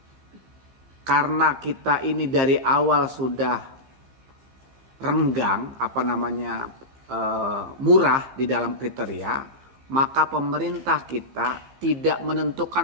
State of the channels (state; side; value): late; left; 15 ms